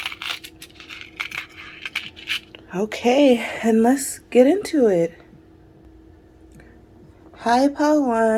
Okay, and let's get into it. Hi, Pile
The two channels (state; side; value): identical; both; correlation 1.00